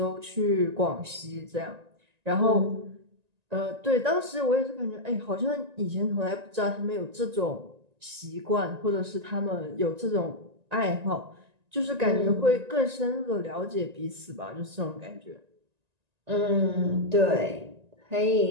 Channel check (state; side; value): late; left; 1.9 ms